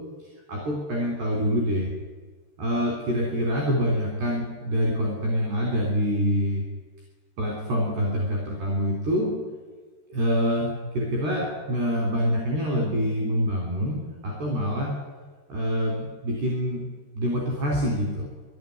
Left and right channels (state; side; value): late; left; 13 ms